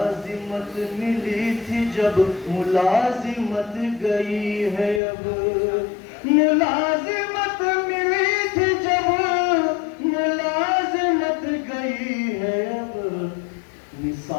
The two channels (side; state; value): right; drops out; at 5.0 s